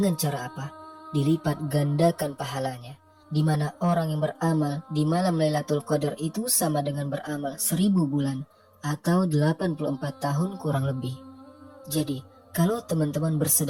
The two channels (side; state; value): both; identical; correlation 1.00